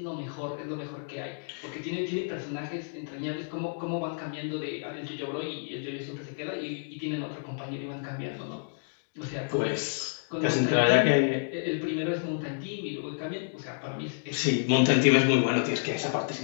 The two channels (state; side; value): silent; right; digital silence